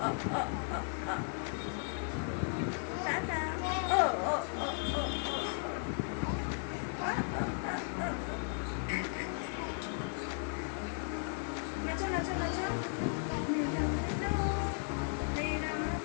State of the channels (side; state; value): right; silent; 54 dB below the other